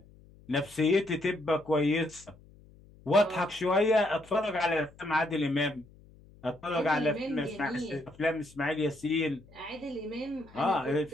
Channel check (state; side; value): noise; left; hum, 24 dB below the sound